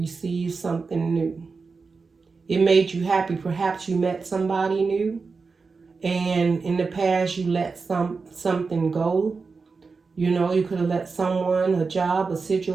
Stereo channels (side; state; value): left; quieter; 4.6 dB